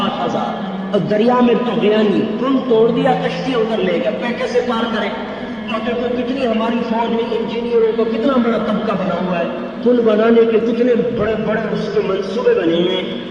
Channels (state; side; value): identical; both; correlation 1.00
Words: اور دریا میں طغیانی پل توڑ دیا، کشتی ادھر لے گیا، پہ کیسے پار کرے؟ اور دیکھو کتنی ہماری فوج میں انجینئروں کا کتنا بڑا طبقہ بنا ہوا ہے، پل بنانے کے کتنے بڑے بڑے اس کے منصوبے بنے ہوئے ہیں۔